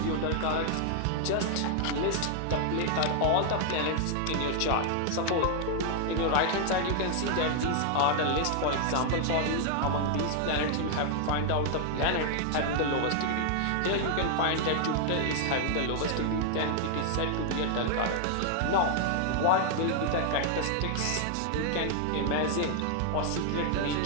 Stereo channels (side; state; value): both; different; correlation 0.00